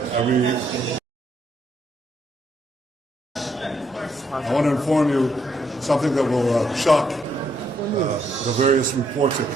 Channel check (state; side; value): normal; both; correlation 0.74